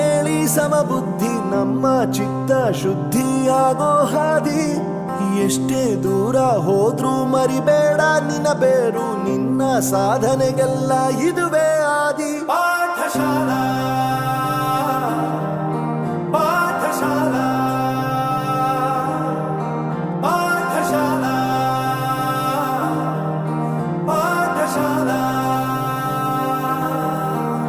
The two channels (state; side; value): identical; both; correlation 1.00